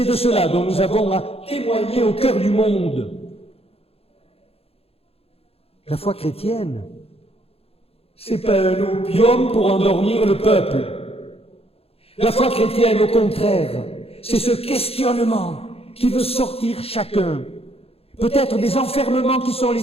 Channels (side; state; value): right; late; 0.28 ms